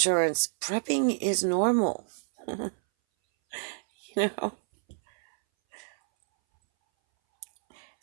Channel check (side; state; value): left; silent; 59 dB below the other